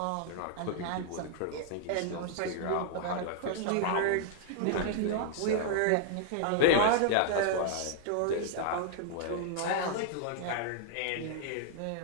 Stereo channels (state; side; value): different; both; correlation 0.00